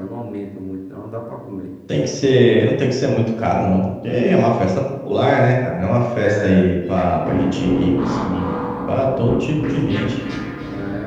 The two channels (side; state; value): both; identical; correlation 1.00